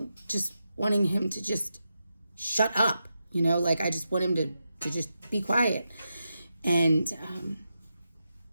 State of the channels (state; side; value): inverted; both; correlation -0.87